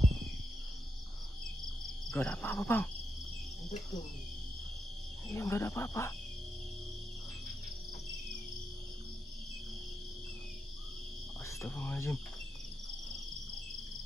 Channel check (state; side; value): normal; both; correlation 0.85